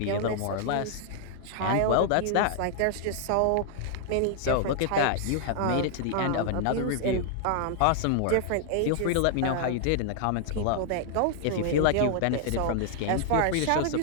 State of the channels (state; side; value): different; both; correlation -0.01